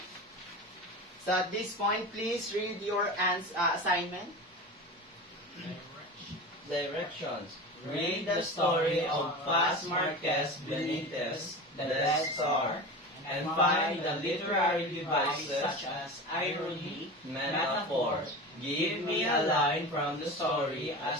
So at this point, please read your assignment. Directions. Read the story of Paz Marquez Benitez, The Death Star, and find the literary devices such as irony, metaphor. Give me a line from the story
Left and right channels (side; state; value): both; normal; correlation 0.30